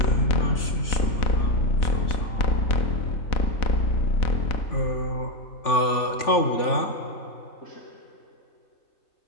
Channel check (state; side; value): late; right; 3.4 ms